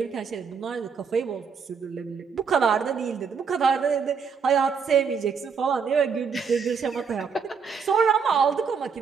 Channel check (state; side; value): quieter; left; 6.0 dB